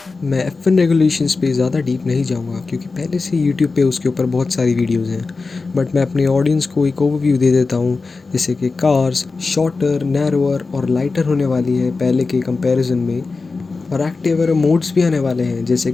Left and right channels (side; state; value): right; quieter; 4.1 dB